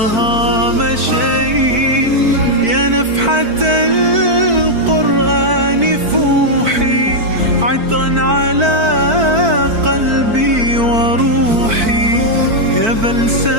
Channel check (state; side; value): late; left; 4.5 ms